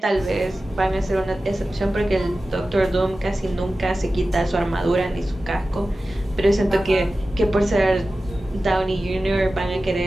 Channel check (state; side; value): normal; both; correlation 0.95